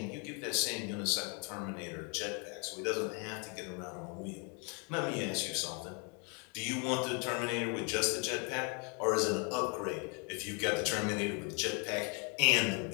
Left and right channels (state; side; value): quieter; right; 34.9 dB